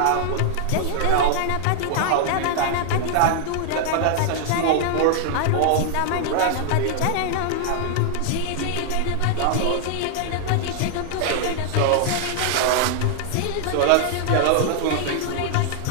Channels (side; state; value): both; different; correlation 0.00